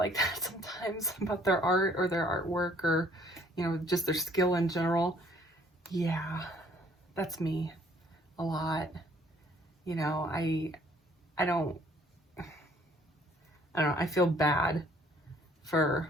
that sometimes about their art or their artwork, or, you know, just their skill in general? Yeah, that's me a lot. You know, I don't know, I feel bad for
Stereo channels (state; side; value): normal; both; correlation 0.60